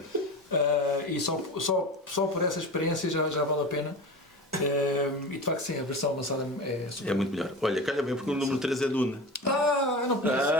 E só por essa experiência já vale a pena. E de facto, sim, a versão avançada é super. É muito melhor. Olha, calha bem, porque o número 3 é Dune. Não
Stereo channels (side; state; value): both; normal; correlation 0.30